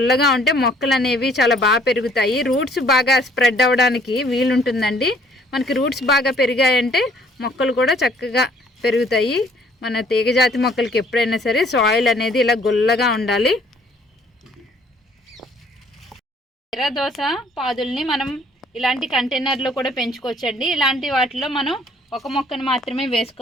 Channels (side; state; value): both; normal; correlation 0.60